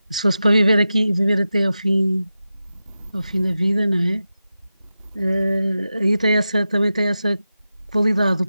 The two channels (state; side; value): inverted; both; correlation -0.92